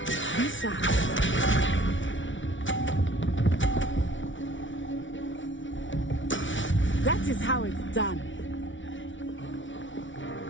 Be sharp. That is how it's done.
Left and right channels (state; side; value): late; right; 0.56 ms